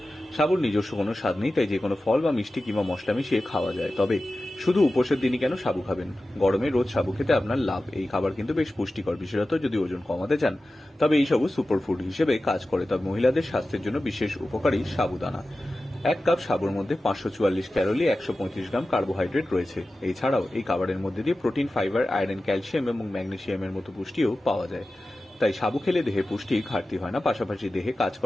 সাবুর নিজস্ব কোনো স্বাদ নেই, তাই যে কোনো ফল বা মিষ্টি কিংবা মশলা মিশিয়ে খাওয়া যায়। তবে শুধু উপোসের দিনই কেন সাবু খাবেন? গরমে রোজ সাবু খেতে আপনার লাভ। এই খাবার কিন্তু বেশ পুষ্টিকর, বিশেষত যদি ওজন কমাতে চান। তবে এই সাবু সুপারফুড হিসেবে কাজ করে। তবে মহিলাদের স্বাস্থ্যের জন্য বিশেষ উপকারী সাবুদানা। 1 কাপ সাবুর মধ্যে 544 ক্যালোরি, 135 গ্রাম কার্বোহাইড্রেট রয়েছে। এছাড়াও এই খাবারের মধ্যে দিয়ে প্রোটিন, ফাইবার, আয়রন, ক্যালসিয়াম এবং ম্যাগনেসিয়ামের মতো পুষ্টিও পাওয়া যায়। তাই সাবু খেলে দেহে পুষ্টির ঘাটতি হয় না, পাশাপাশি দেহে কাজ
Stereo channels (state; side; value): normal; both; correlation 0.94